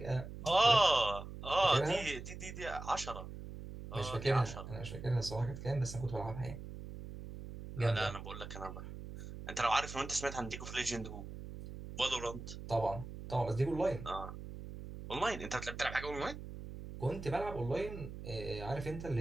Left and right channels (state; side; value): noise; right; hum, 10 dB below the sound